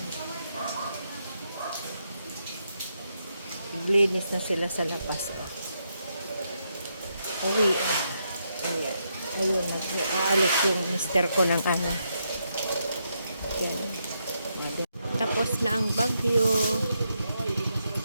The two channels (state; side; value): inverted; both; correlation -0.80